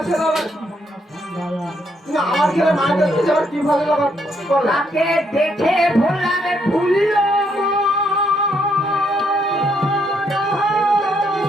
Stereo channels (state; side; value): normal; both; correlation 0.74